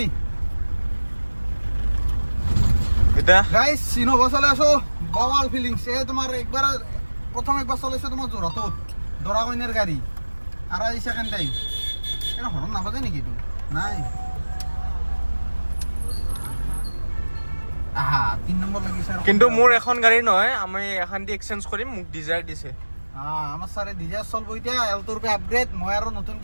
এটা গাইছ ইন'ভা চলাই আছো বৱাল ফিলিংছ এই তোমাৰ প্ৰথম একবাৰ চলাইছো তোমাৰ যোৰহাটত দৰা কইনাৰ গাড়ী আৰু এই ছেকেণ্ড টাইম এটা হৰণ নাবাজে নেকি এইটো নাই আহা 3 নম্বৰ লাগিছে আৰু কিন্তু মোৰ এখন গাড়ী নহয়, আমি এখন দি এক্সচেঞ্জ কৰিম, মোক ডিজায়াৰ দিছে। আমাৰ ছাৰে ডিজায়াৰ চলব এতিয়া এল্টোৰ পে আপগ্ৰেড। মই আৰু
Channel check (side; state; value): both; inverted; correlation -1.00